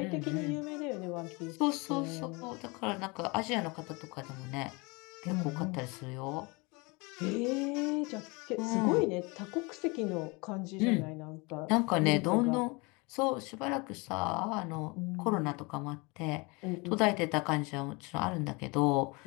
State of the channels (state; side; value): quieter; right; 27.6 dB